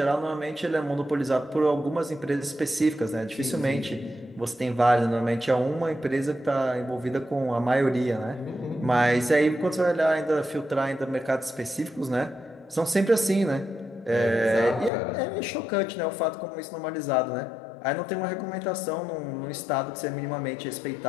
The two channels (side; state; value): right; drops out; at 14.9 s